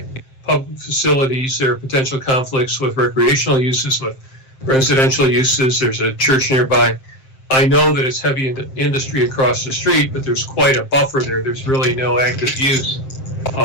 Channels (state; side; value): late; right; 7.6 ms